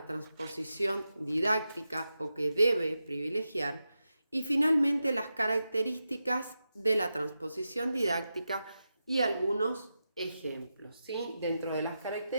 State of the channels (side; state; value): both; inverted; correlation -0.90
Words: transposición didáctica o que debe privilegiar, y finalmente las características de la transposición didáctica y algunos ejemplos, ¿sí? Dentro de las